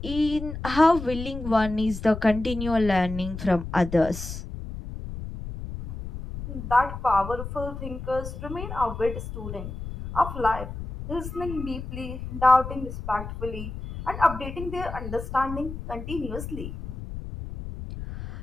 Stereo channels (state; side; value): noise; left; rumble, 8 dB below the sound